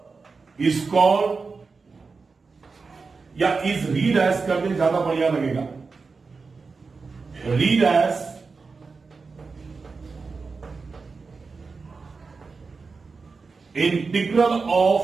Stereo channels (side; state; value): left; quieter; 4.5 dB